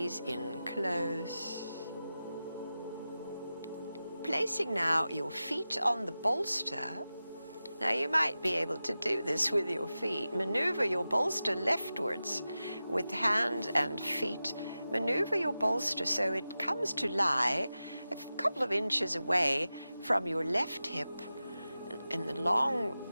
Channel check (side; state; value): both; inverted; correlation -0.94